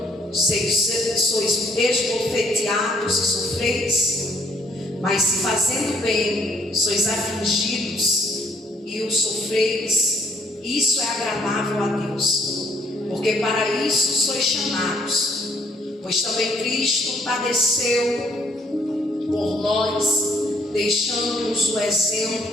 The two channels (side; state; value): both; normal; correlation 0.67